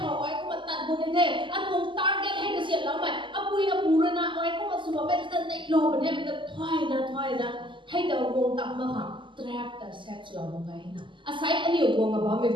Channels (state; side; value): late; left; 0.24 ms